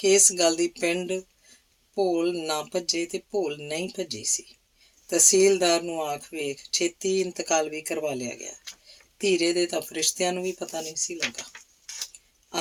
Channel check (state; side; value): identical; both; correlation 1.00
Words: ਇਸ ਗੱਲ ਦੀ ਪਿੰਡ ਭੋਲ ਨਾ ਭੱਜੇ ਤੇ ਭੋਲ ਨਹੀਂ ਭੱਜੀ ਸੀ। ਤਹਿਸੀਲਦਾਰ ਨੂੰ ਆਖ ਵੇਖ, ਛੇਤੀ ਇੰਤਕਾਲ ਵੀ ਕਰਵਾ ਲਿਆ ਗਿਆ। ਧੀਰੇ ਦੇ ਤਾਂ ਫਰਿਸ਼ਤਿਆਂ ਨੂੰ ਵੀ ਪਤਾ ਨਹੀਂ ਸੀ ਲੱਗਾ।